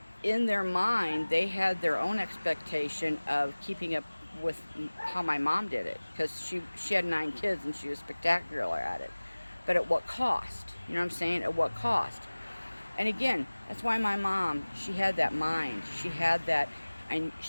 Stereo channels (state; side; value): inverted; both; correlation -1.00